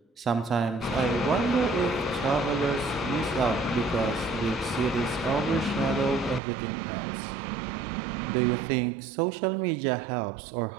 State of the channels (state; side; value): drops out; left; at 6.4 s